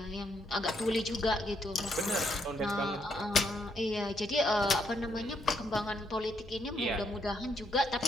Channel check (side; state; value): right; noise; hum, 19 dB below the sound